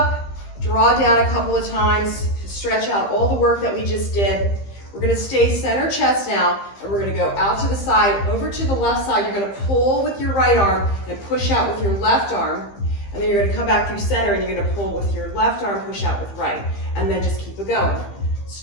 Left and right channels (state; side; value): late; right; 15 ms